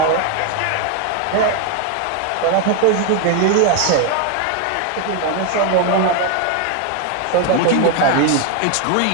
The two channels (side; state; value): both; different; correlation 0.01